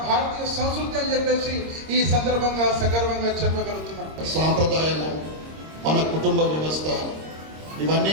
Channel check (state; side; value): late; left; 26 ms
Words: భారతీయ సంస్కృతి అని చెప్పేసి ఈ సందర్భంగా సగర్వంగా చెప్పగలుగుతున్నాం. సాంప్రదాయము, మన కుటుంబ వ్యవస్థ,